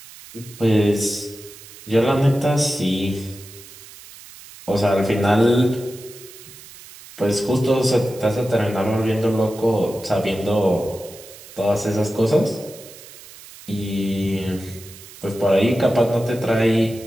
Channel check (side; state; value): right; noise; hiss, 18 dB below the sound